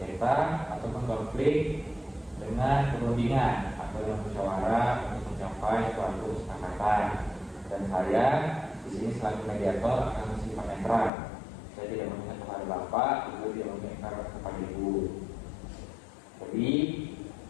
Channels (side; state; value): right; drops out; at 11.1 s